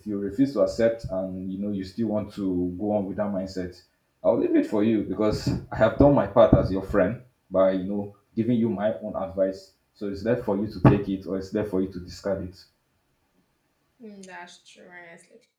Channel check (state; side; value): identical; both; correlation 1.00